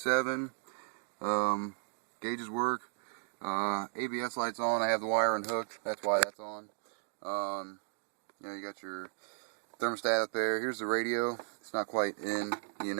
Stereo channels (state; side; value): silent; left; digital silence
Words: Gauges work. ABS lights on. I have the wire unhooked, that's why that's on. You got your thermostat up there. Here's the radio. It's not quite in,